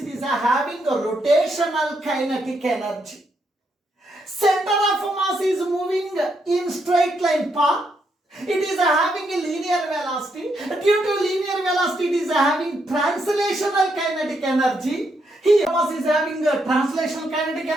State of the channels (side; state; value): both; normal; correlation 0.78